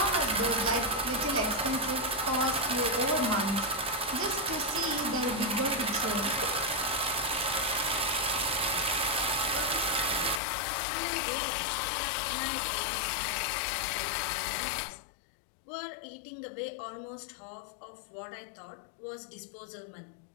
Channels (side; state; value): right; drops out; at 10.4 s